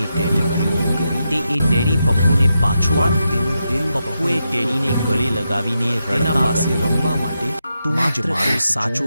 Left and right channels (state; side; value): inverted; both; correlation -0.86